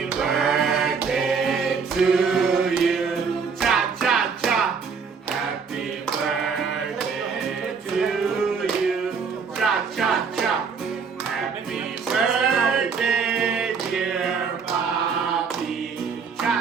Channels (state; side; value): quieter; left; 5.7 dB